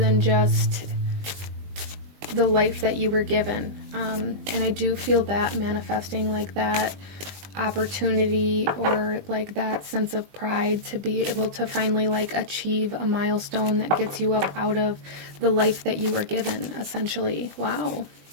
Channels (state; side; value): late; left; 20 ms